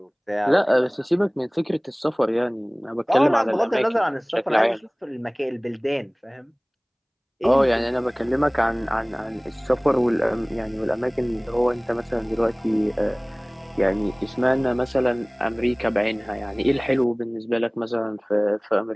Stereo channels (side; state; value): both; identical; correlation 1.00